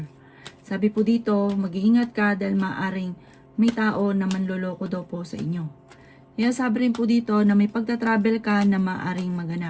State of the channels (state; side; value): identical; both; correlation 1.00